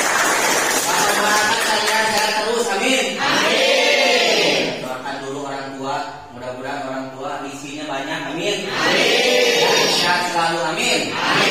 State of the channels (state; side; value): identical; both; correlation 1.00